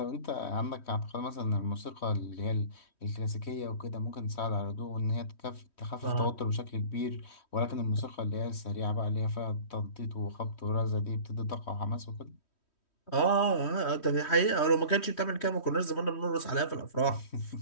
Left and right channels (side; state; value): right; late; 3.1 ms